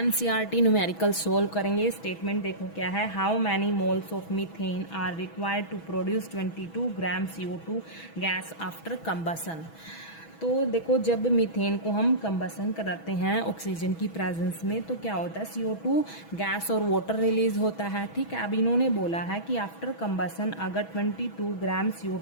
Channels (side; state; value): right; late; 6.1 ms